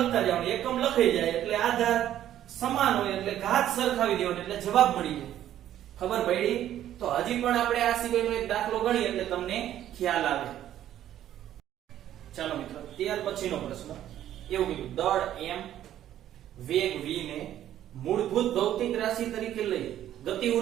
જવાનું. એકમ લખાઈ જાય એટલે આધાર સમાન હોય એટલે ઘાત સરખાવી દેવાનો એટલે જવાબ મળી જાય. ખબર પડી. તો હજી પણ આપણે આ સિવાયનો એક દાખલો ગણીએ એટલે તમને ખ્યાલ આવે. ચાલો મિત્રો ત્યાર પછીનો પ્રશ્ન એવું કીધું દળ m વેગ v ને મૂળભૂત ભૌતિક રાશિ તરીકે લઈ ગતિ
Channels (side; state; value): left; quieter; 11.8 dB